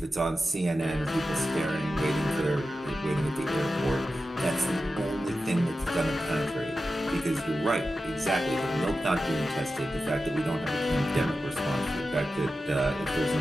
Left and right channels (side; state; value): both; normal; correlation 0.92